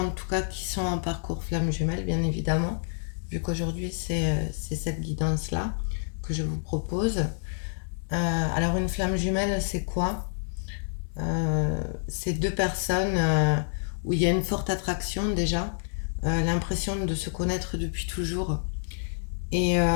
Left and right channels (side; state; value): right; silent; 59 dB below the other